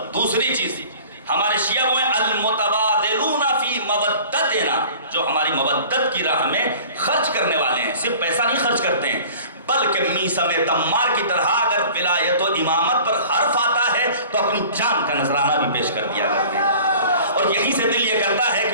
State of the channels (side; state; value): both; inverted; correlation -0.45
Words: دوسری چیز ہمارے شیعہ وہ ہیں المتبادلون فی مودتنا، جو ہماری مودت کی راہ میں خرچ کرنے والے ہیں، صرف پیسہ نہیں خرچ کرتے ہیں بلکہ میثم تمار کی طرح اگر ولایت و امامت پر حرف آتا ہے تو اپنی جان کا نذرانہ بھی پیش کر دیا کرتے ہیں۔ اور یہیں سے دل یہ کرتا ہے